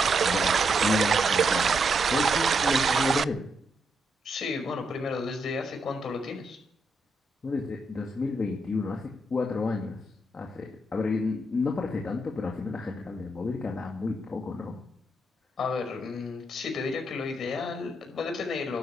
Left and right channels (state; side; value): normal; both; correlation 0.80